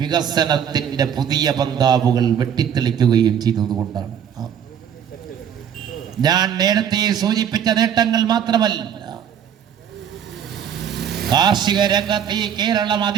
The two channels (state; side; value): quieter; left; 8.7 dB